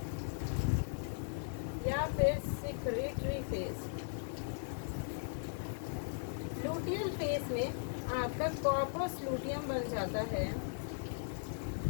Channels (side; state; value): right; silent; digital silence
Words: या फिर सिक्रेटरी फेज। लूटियल फेज में आपका कॉर्पस लूटियम बन जाता है।